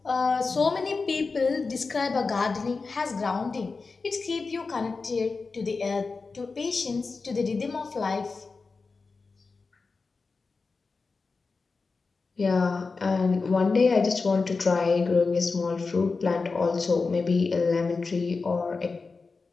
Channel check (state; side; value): quieter; right; 4.3 dB